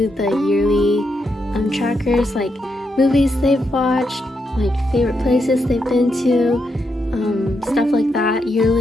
the yearly trackers, like movies they've watched, like favorite places they've been to, stuff like that,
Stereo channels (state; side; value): normal; both; correlation 0.82